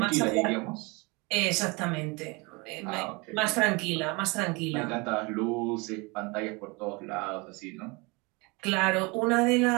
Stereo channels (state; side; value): quieter; left; 27.4 dB